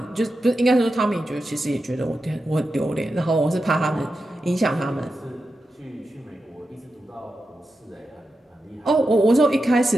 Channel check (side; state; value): both; normal; correlation 0.90